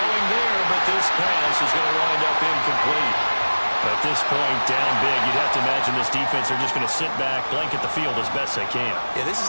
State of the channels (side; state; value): both; inverted; correlation -1.00